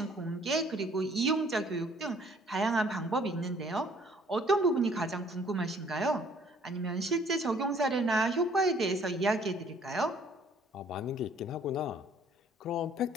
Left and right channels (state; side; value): normal; both; correlation 0.59